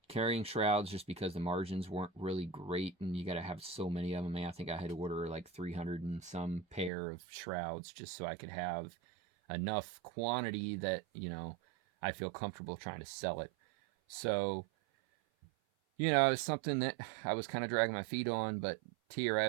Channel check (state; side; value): drops out; left; at 6.9 s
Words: carrying shrouds just because the margins weren't really great, and you got to have so many of them. I think I had to order like 300 and some pair of shrouds just so I could have enough quantity that, you know, I feel comfortable trying to sell it. So, you know, it's something that I was kind of dragging my feet on, but